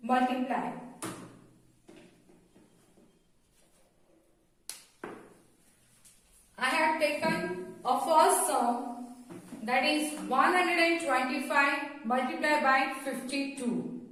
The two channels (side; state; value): both; identical; correlation 1.00